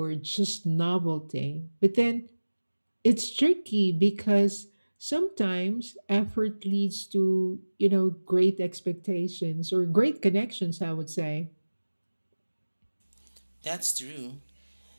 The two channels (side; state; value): both; inverted; correlation -1.00